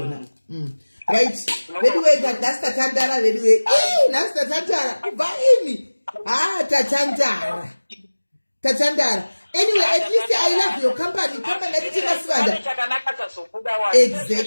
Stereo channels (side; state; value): both; inverted; correlation -1.00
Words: right veduwe nhasi tatandara veduwe nhasi tatandara kubva ini tatandara. Anyway, at least I love your company. Company that is Masvada.